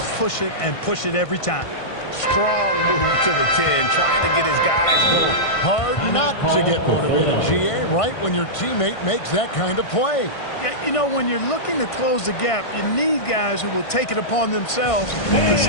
push it and push it every time. Strong move to the 10, trying to get his guys going. Hard not to get motivated, GA, right when your teammate makes that kind of play. Yeah, you know, when you're looking to close the gap, you need guys who will take it upon themselves to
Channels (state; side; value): late; right; 1.5 ms